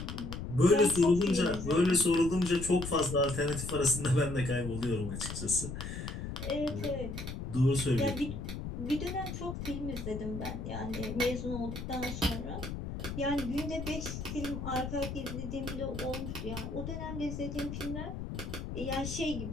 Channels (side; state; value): left; noise; rumble, 6 dB below the sound